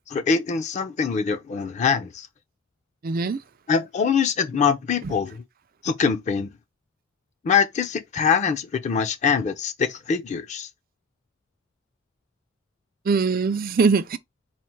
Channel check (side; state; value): right; quieter; 3.0 dB